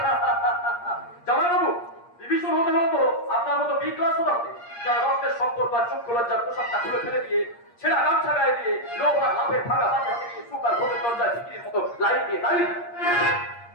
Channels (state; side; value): late; right; 8.5 ms